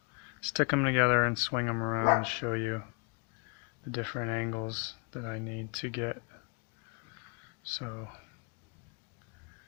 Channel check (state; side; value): quieter; right; 34.5 dB